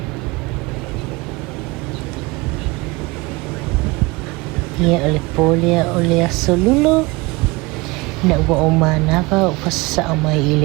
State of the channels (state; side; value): quieter; left; 24.0 dB